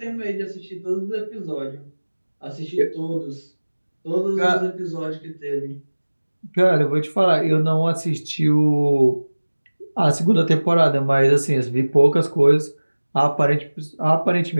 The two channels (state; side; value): inverted; both; correlation -1.00